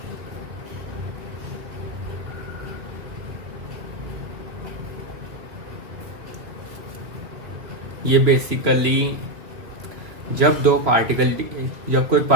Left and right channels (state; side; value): late; left; 2.9 ms